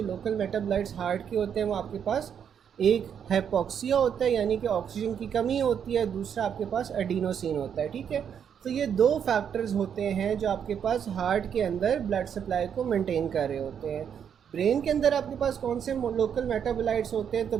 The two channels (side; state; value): left; quieter; 8.1 dB